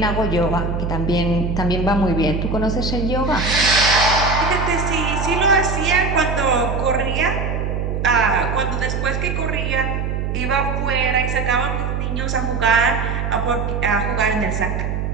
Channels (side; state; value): right; noise; hum, 2 dB below the sound